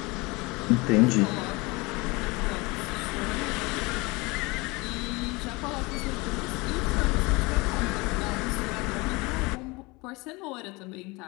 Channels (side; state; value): right; quieter; 24.8 dB